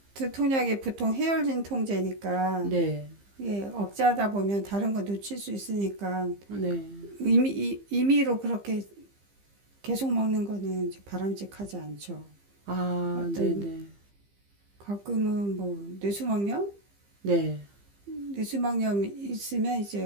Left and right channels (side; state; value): left; late; 15 ms